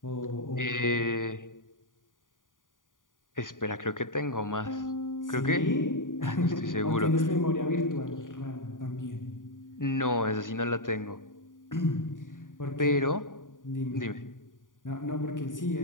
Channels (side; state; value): right; late; 0.89 ms